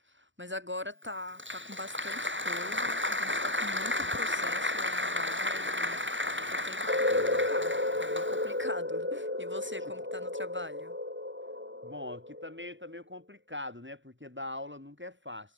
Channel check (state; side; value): late; left; 0.55 ms